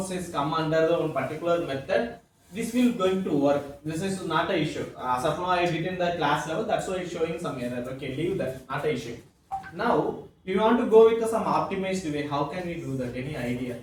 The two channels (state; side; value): identical; both; correlation 1.00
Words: is come under the one particular method, this will going to work. This is not a issue. Suppose I did in the class level, that's why it's showing some error. Okay, leave that, not a issue. Now we want to go with some optimized way. How can we do that? Any idea?